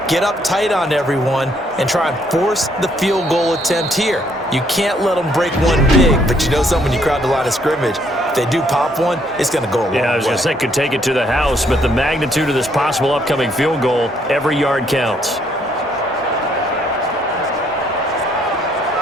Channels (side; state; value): both; normal; correlation 0.69